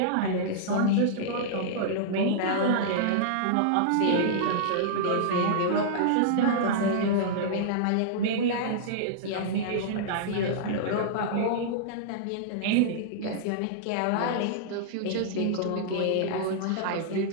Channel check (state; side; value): different; both; correlation -0.02